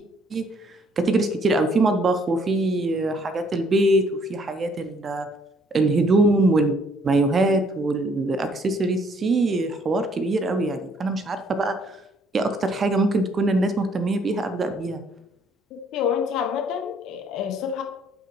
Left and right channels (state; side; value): normal; both; correlation 0.64